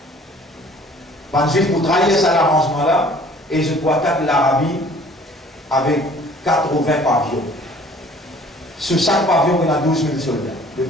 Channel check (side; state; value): both; normal; correlation 0.53